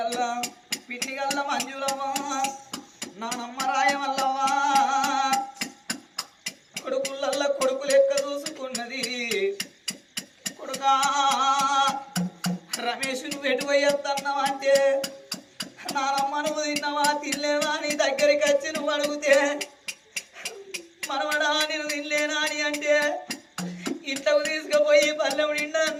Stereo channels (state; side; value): identical; both; correlation 1.00